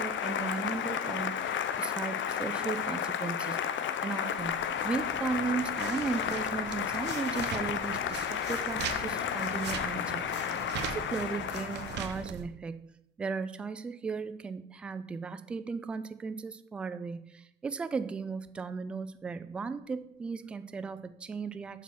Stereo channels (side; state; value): both; normal; correlation 0.36